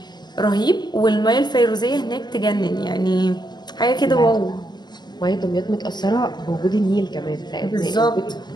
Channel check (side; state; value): right; late; 0.21 ms